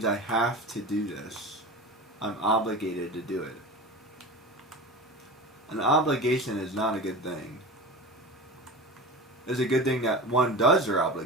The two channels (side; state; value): both; normal; correlation 0.30